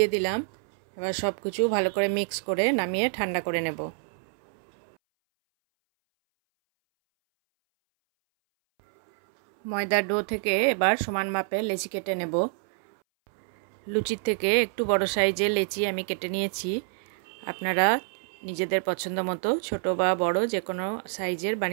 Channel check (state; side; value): silent; left; 60 dB below the other